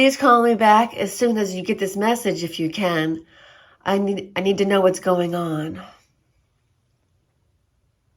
call me back as soon as you get this message if you can? I need to know what's going on.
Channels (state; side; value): identical; both; correlation 1.00